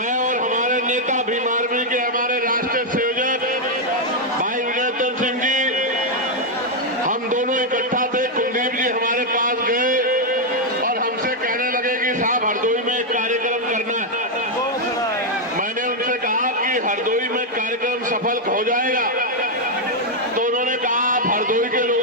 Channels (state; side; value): normal; both; correlation 0.00